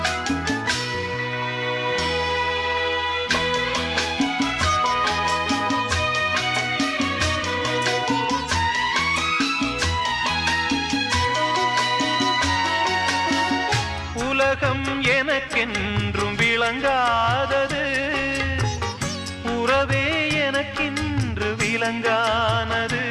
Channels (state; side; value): identical; both; correlation 1.00